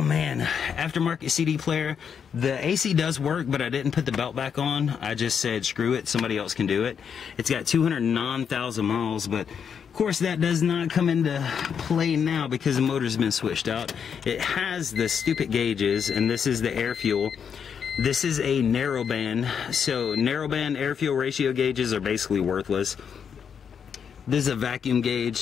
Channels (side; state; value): right; quieter; 7.2 dB